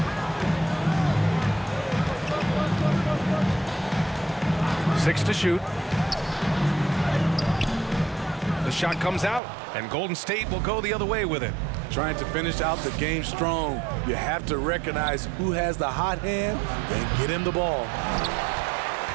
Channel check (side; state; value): left; drops out; at 9.4 s